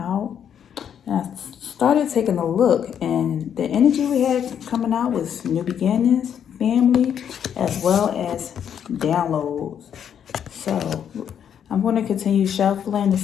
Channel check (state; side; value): quieter; right; 8.7 dB